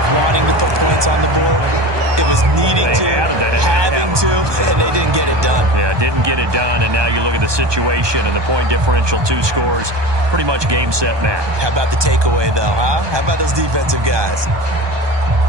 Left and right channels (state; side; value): late; left; 1.2 ms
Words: wanting to put points on the board. It was needing to, having to, and they didn't get it done. Yeah, didn't get it done, and now you look at the situation and the point differential, 2 scores, pretty much game, set, match. How about the takeaway, though, huh? How about those defensive guys?